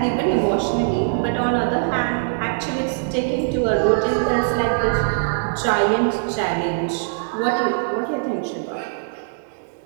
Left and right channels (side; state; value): left; silent; 64 dB below the other